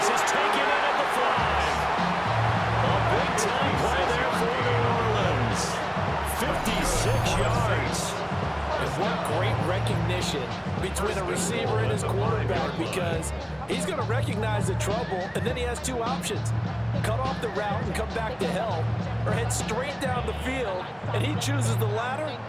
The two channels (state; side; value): identical; both; correlation 1.00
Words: is taken in at the 5. A big-time play there for New Orleans. 56 yards. And what great recognition between a receiver and his quarterback, because he's going to recognize the trouble, and then he has 2 options. Cut off the route and come back to help, or head straight down the field, and he chooses the latter,